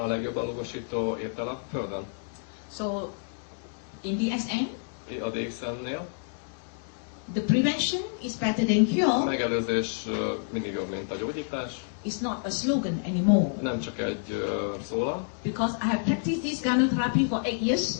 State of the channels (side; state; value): right; silent; digital silence